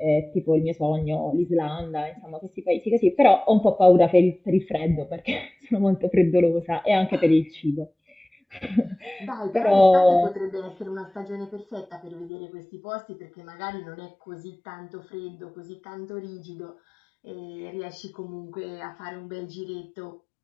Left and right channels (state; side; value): drops out; right; at 12.3 s